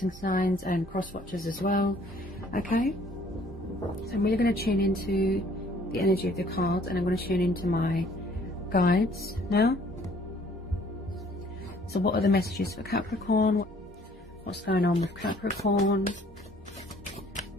signs and cross watchers as well. Okay, so I'm really going to tune into the energy of the cards, and I'm going to tune into my guides now. So what are the messages for Capricorn? What's going on with Capricorn?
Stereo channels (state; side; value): normal; both; correlation 0.58